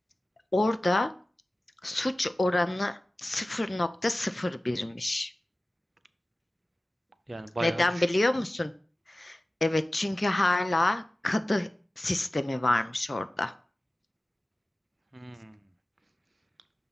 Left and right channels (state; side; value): normal; both; correlation 0.97